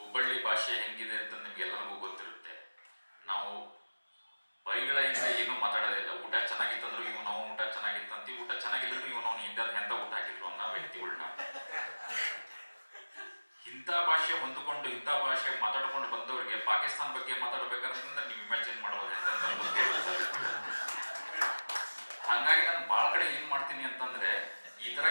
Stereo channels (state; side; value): inverted; both; correlation -1.00